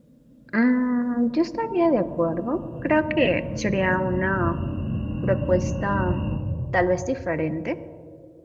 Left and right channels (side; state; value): both; identical; correlation 1.00